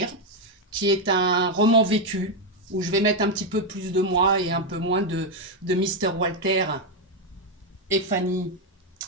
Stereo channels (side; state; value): both; normal; correlation 0.04